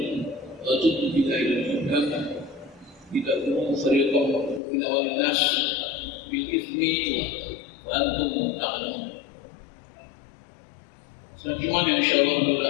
وتدلوا بها إلى الحكام لتأكلوا فريقا من أموال الناس بالإثم وأنتم تعلمون. Selanjutnya insyaallah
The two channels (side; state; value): right; drops out; at 4.6 s